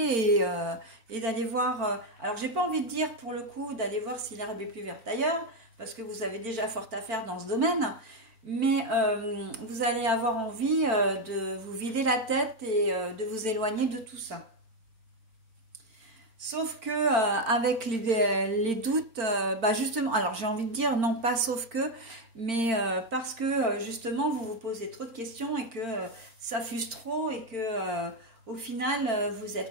et d'aller voir... alors, j'ai pas envie de dire, pour le coup, d'aller voir si l'herbe est plus verte ailleurs, parce que vous avez déjà fort à faire dans ce domaine, mais vous allez avoir envie de vous vider la tête et de vous éloigner de tout ça. Sauf que avec les doutes, bah justement, alors j'ai envie de dire non pas sauf que, mais parce que justement vous vous posez trop de questions et que ça fuse trop et que au final vous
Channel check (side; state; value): left; late; 4.4 ms